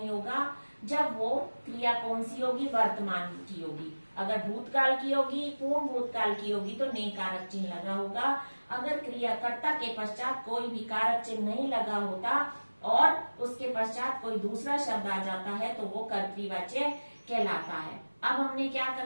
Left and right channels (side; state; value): both; inverted; correlation -1.00